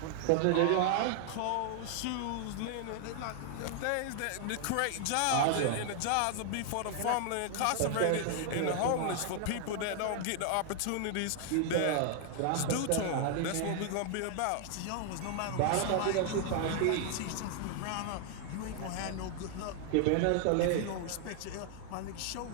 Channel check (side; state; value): both; different; correlation 0.00